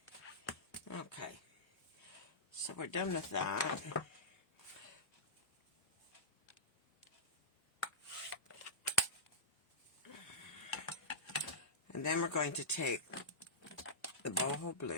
one. Okay. So we're done with that. And then we're going to take the boho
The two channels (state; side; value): late; right; 1.7 ms